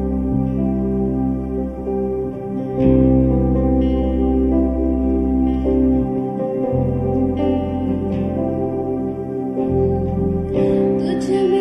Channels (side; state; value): both; identical; correlation 1.00